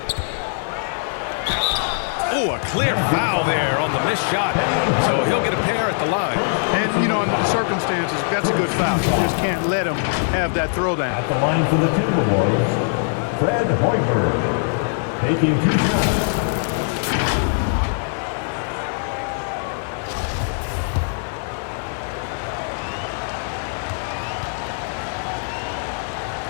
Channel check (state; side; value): silent; right; digital silence